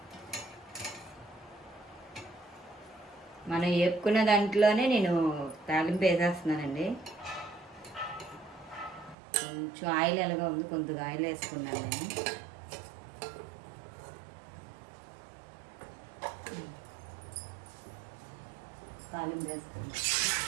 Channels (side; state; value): left; drops out; at 9.2 s